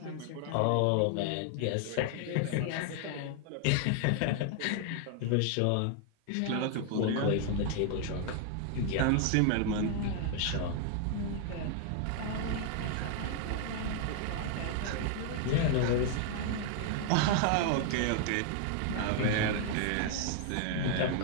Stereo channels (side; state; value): both; different; correlation 0.00